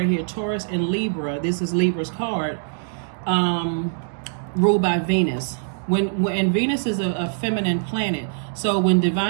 here, Taurus and Libra. This is Libra's card, ruled by Venus. When Venus is a feminine planet, so when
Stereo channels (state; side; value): silent; left; digital silence